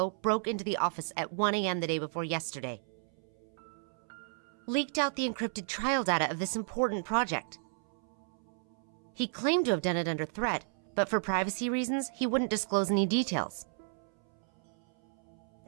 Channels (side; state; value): left; silent; 55 dB below the other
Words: broke into the office at 1 a.m. the day before yesterday. Leaked out the encrypted trial data of this important project. He claimed to have done it under threat, but for privacy reasons, he wouldn't disclose any details.